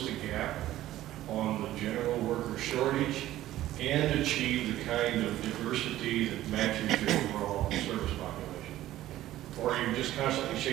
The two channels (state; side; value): quieter; left; 14.4 dB